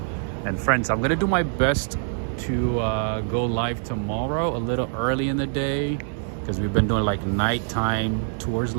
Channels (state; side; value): silent; left; digital silence